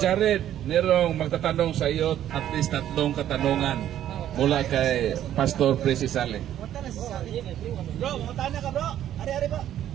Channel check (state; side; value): quieter; left; 11.5 dB